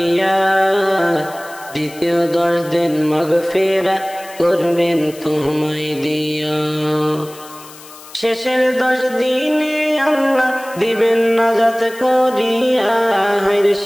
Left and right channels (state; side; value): noise; left; hiss, 19 dB below the sound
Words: দ্বিতীয় 10 দিন মাগফিরাত করবেন তোমায় দিয়া। শেষের 10 দিনে আল্লাহ দিবেন নাজাত করিয়া,